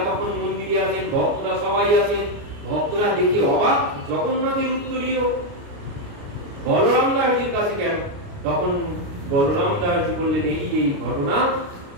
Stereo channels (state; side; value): late; left; 29 ms